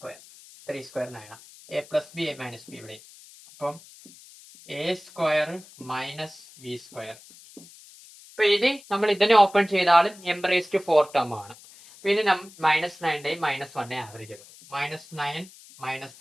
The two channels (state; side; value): noise; left; hiss, 21 dB below the sound